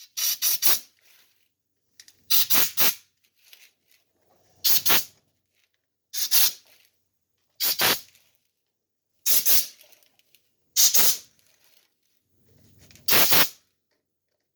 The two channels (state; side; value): identical; both; correlation 1.00